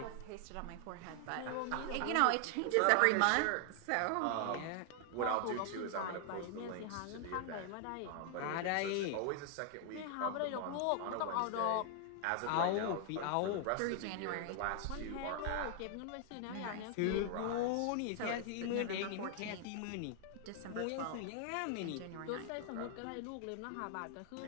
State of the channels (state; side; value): different; both; correlation 0.00